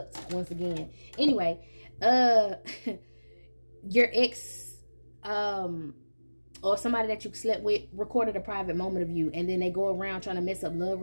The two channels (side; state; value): both; inverted; correlation -1.00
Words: once again. Anyway, your ex or somebody that you slept with recorded a private moment of you, and then they go around trying to mess up love